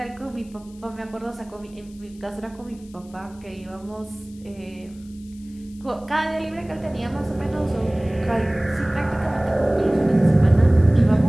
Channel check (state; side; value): noise; left; hiss, 27 dB below the sound